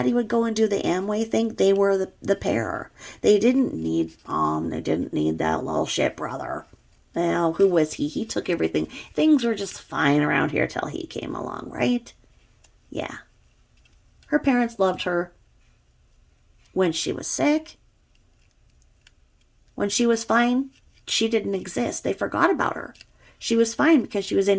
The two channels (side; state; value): both; identical; correlation 1.00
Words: would go and do the Amway thing, they were the pair. They didn't need Mom. They didn't need that little shit brother. Well, who was he? He took everything. Things were just fine around here till he came along, right? Yeah. Her parents loved her when she was sick. When she was fine, she didn't exist. They forgot about her. She was fine because she was